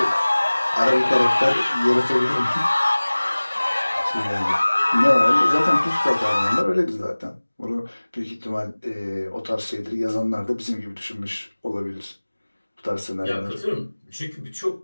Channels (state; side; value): inverted; both; correlation -1.00